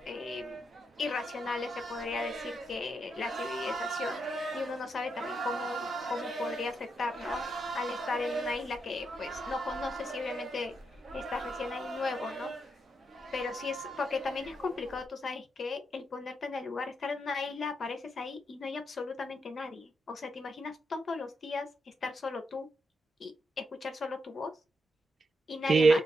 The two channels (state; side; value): normal; both; correlation 0.81